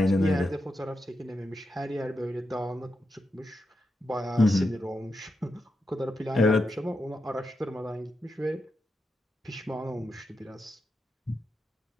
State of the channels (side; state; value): both; normal; correlation 0.86